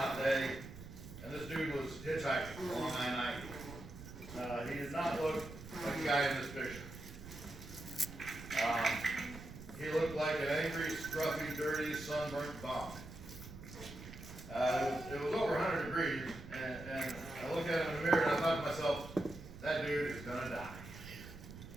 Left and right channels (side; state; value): right; noise; rumble, 13 dB below the sound